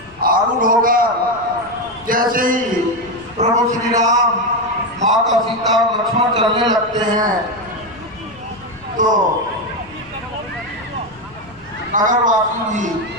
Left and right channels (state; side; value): noise; left; rumble, 24 dB below the sound